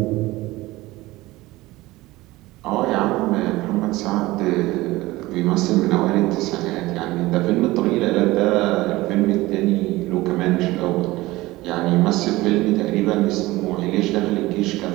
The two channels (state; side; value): quieter; left; 19.1 dB